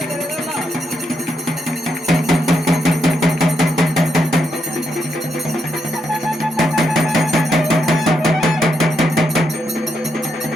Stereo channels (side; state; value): both; normal; correlation 0.80